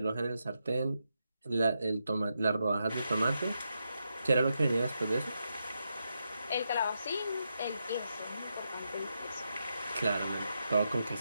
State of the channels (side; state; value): both; inverted; correlation -0.84